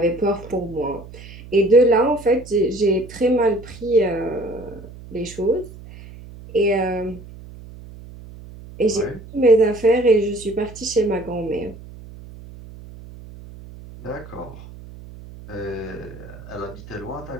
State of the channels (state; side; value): noise; right; hum, 17 dB below the sound